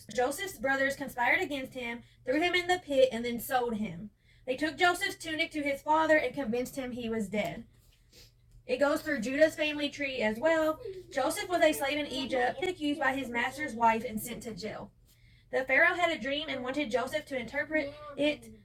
Joseph's brothers conspired against him, threw him in the pit, and then sold him. They took Joseph's tunic to his father and convinced him he was dead. It goes through Judah's family tree as well. Joseph was a slave in Egypt, accused by his master's wife and sent to jail. The Pharaoh had a dream and wanted Joseph to interpret it.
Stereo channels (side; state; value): both; identical; correlation 1.00